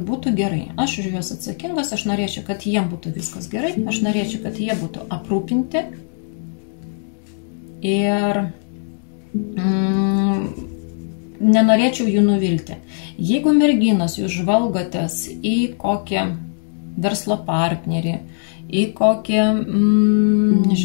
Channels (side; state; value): right; silent; digital silence